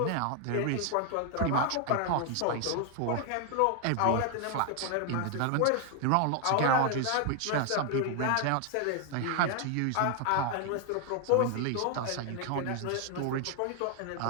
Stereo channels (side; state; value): both; different; correlation 0.00